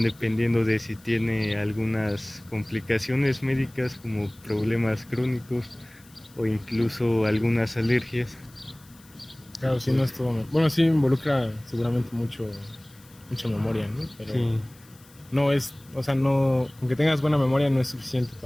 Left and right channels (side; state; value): left; noise; hiss, 26 dB below the sound